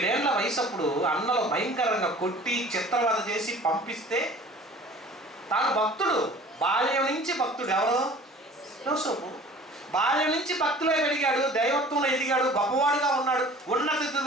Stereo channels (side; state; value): both; normal; correlation 0.46